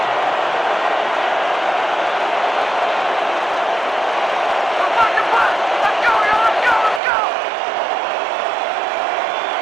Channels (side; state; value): left; drops out; at 7.0 s